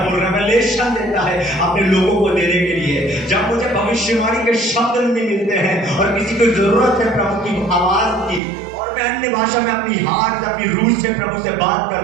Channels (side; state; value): left; drops out; at 8.4 s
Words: रेवलेशन देता है अपने लोगों को देने के लिए। जब मुझे भविष्यवाणी के शब्द नहीं मिलते हैं और किसी को जरूरत है प्रभु की आवाज की, और मैं अन्य भाषा में अपनी हार्ट, अपनी रूह से प्रभु से बात